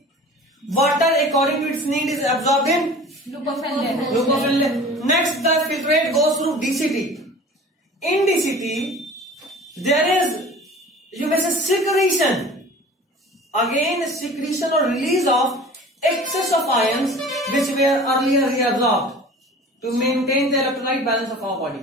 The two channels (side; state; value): both; normal; correlation 0.42